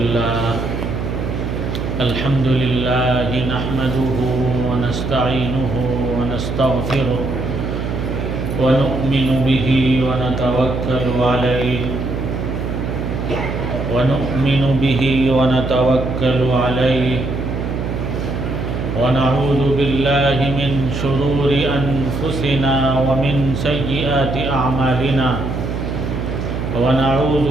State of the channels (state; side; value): noise; right; hum, 3 dB below the sound